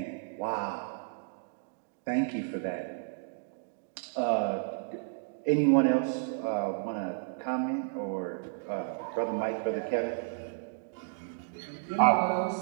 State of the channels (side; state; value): left; silent; digital silence